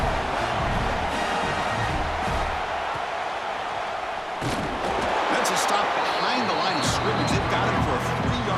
That's a stop behind the line of scrimmage. They've got him for a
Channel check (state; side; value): identical; both; correlation 1.00